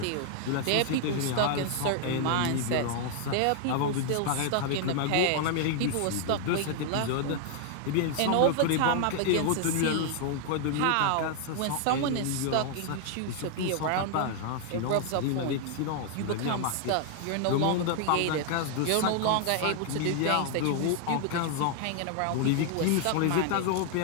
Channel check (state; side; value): different; both; correlation 0.00